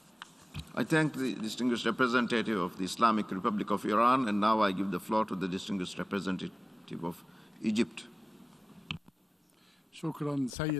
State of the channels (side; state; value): both; normal; correlation 0.97